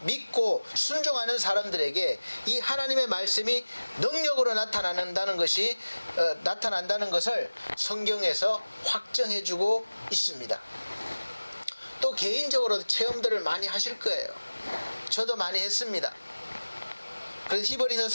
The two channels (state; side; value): inverted; both; correlation -1.00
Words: 믿고 순종하는 사람들에게 이 하나님의 말씀이 능력으로 나타난다는 것을 성경에서 확정해주고 있습니다. 또 개인적으로도 체험들을 많이 하실 거예요. 저도 많이 했습니다. 그래서 히브리서